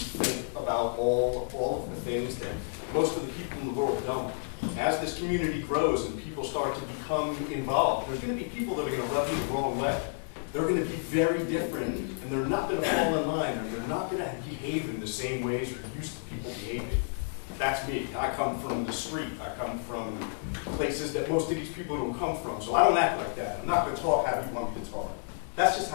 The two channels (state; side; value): silent; right; 57 dB below the other